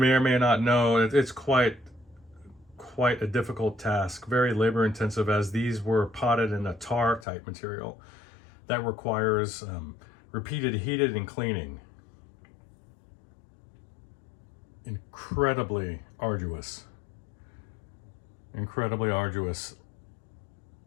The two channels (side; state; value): right; drops out; at 7.2 s